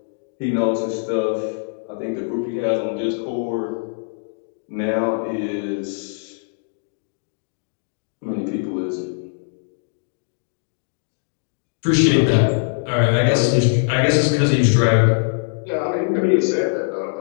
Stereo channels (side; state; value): right; silent; digital silence